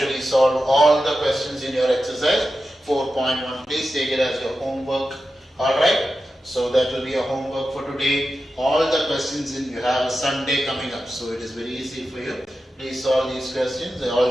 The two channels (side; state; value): both; normal; correlation 0.91